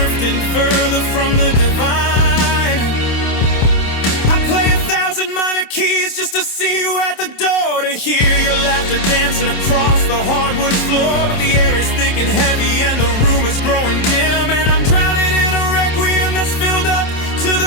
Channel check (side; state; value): right; late; 27 ms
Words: further from the divine. I play 1,000 minor keys just to see you at the door, to hear your laughter dancing across the hardwood floor. But the air is thick and heavy and the room is growing dim, and I'm drowning in a requiem that's filled up to